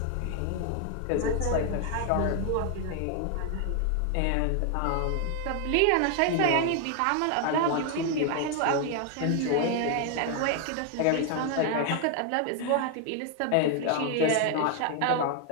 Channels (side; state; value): both; different; correlation 0.00